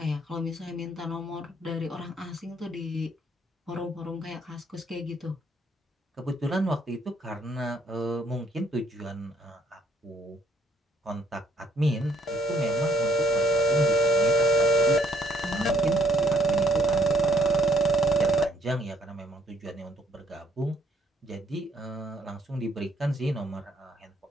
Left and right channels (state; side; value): normal; both; correlation 0.66